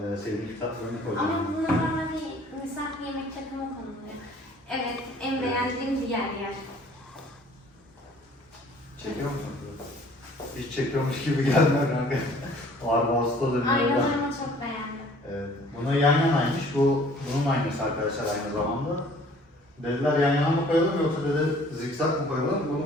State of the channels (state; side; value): normal; both; correlation 0.54